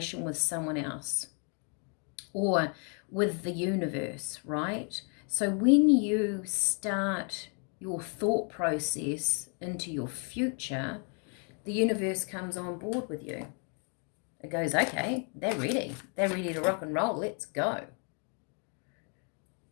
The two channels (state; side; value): quieter; right; 39.3 dB